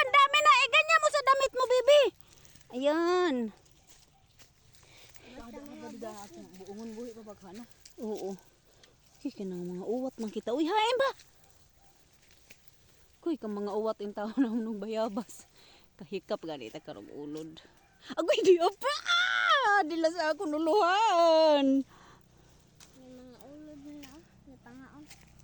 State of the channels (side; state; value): both; identical; correlation 1.00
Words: dami na. Ganyan mo sa damit mo, bebe. Ayan. Buungon buhi pa baghana. Oo. Kaya ng mga uwat man kita. Uy, hain ba? Kuy, kang mga uwat yung tao na nung bayabas. Kahikap ganita karong ulod. Agoy, di apa! Dila sa ako nuluhan. May mga ulod na. May pangaon.